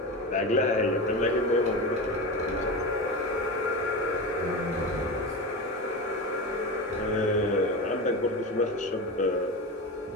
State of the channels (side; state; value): both; normal; correlation 0.23